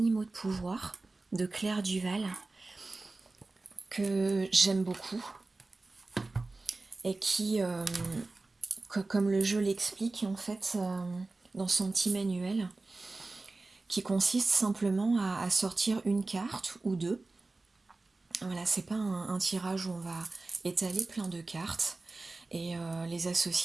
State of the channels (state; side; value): quieter; left; 3.3 dB